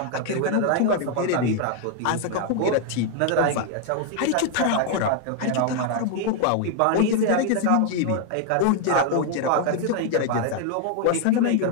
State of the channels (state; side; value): different; both; correlation 0.00